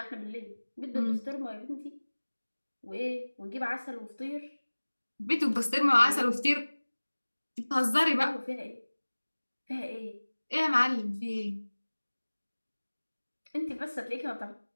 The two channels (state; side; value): inverted; both; correlation -1.00